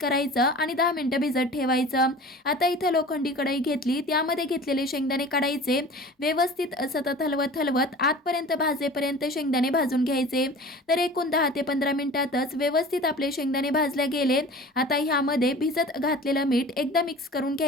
आणि 10 मिनिटं भिजत ठेवायचं. आता इथं लोखंडी कढई घेतली, त्यामध्ये घेतलेले शेंगदाणे काढायचे. व्यवस्थित सतत हलवत हलवत आतपर्यंत भाजेपर्यंत शेंगदाणे भाजून घ्यायचे. तर एकूण 10 ते 15 मिनिटातच व्यवस्थित आपले शेंगदाणे भाजले गेले. आता ह्यामध्ये भिजत घातलेलं मीठ एकदा मिक्स करून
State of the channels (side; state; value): both; normal; correlation 0.40